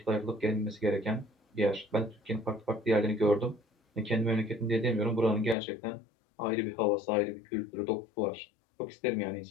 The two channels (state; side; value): drops out; right; at 5.6 s